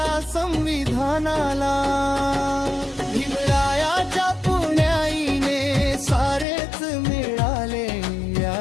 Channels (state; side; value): drops out; right; at 6.5 s